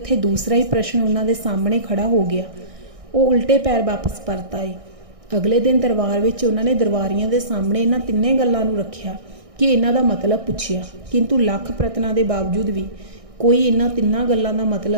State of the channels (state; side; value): late; left; 1.6 ms